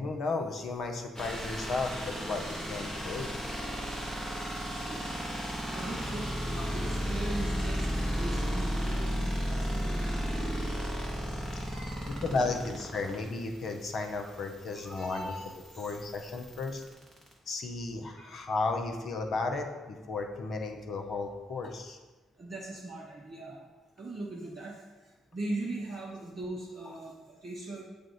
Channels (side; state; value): both; normal; correlation 0.83